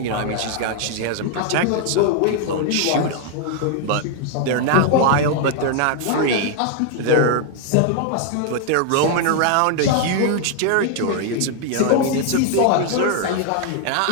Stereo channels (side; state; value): both; different; correlation 0.00